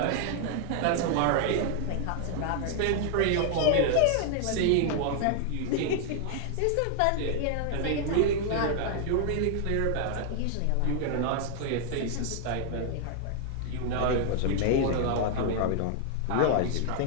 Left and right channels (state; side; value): different; both; correlation 0.00